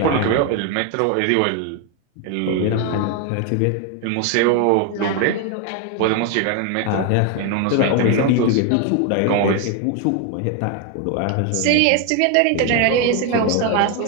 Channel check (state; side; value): different; both; correlation 0.01